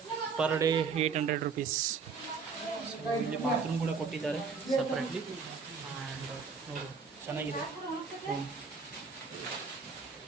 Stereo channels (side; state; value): left; quieter; 5.2 dB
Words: ಪರ್ ಡೇ 800 rupees. ಸೊ ಇಲ್ಲಿ ಬಾತ್ರೂಮ್ ಕೂಡ ಕೊಟ್ಟಿದ್ದಾರೆ ಸಪ್ರೇಟ್ಲಿ. ಆ್ಯಂಡ್ ನೋಡಿ, ಚೆನ್ನಾಗಿದೆ ರೂಮ್.